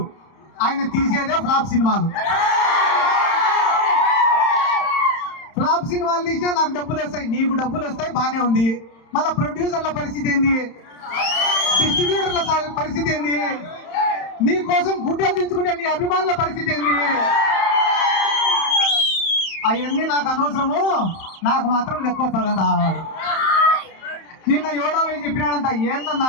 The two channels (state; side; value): late; right; 31 ms